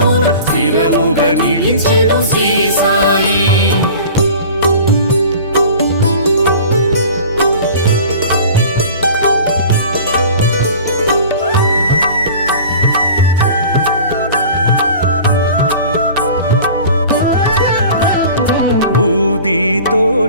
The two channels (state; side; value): inverted; both; correlation -0.41